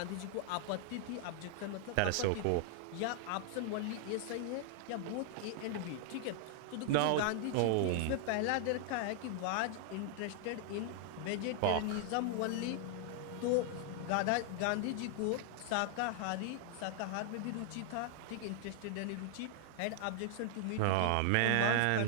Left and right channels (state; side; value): different; both; correlation 0.00